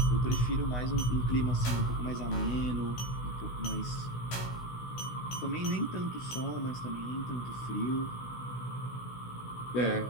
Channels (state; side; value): late; right; 16 ms